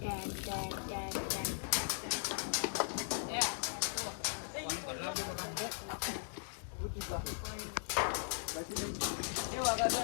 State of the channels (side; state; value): right; silent; digital silence